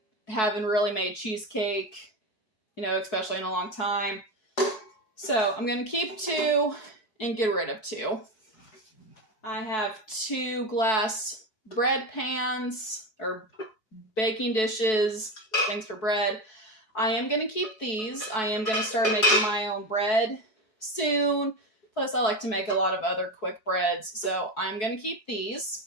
haven't really made cheesecake, especially in a long time. So I'm going to keep 2 and get rid of 2. I have 2 glass bread pans, or baking dishes, things for bread. I am going to keep these. I am going to start making my own bread soon. Plus, I like to make a lot of other quick breads, so I'm going to keep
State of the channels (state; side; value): late; right; 4.6 ms